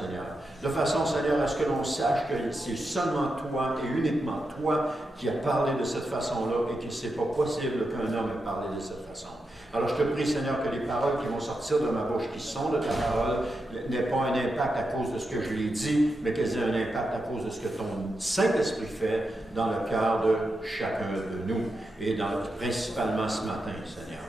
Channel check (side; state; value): both; normal; correlation 0.87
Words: De façon Seigneur à ce que l'on sache que c'est seulement toi et uniquement toi qui as parlé de cette façon-là et que ce n'est pas possible qu'un homme ait parlé de cette façon. Alors je te prie, Seigneur, que les paroles qui vont sortir de ma bouche, qui sont de ta parole, n'aient pas un impact à cause de ce que je l'ai dit, mais qu'elles aient un impact à cause de ce que ton Saint-Esprit fait dans le cœur de chacun de nous, et principalement ce matin, Seigneur.